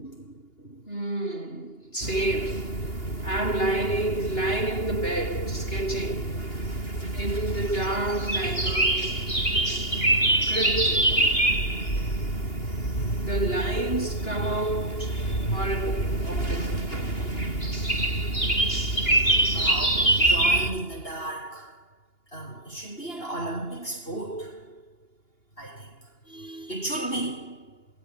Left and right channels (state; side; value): late; right; 2.8 ms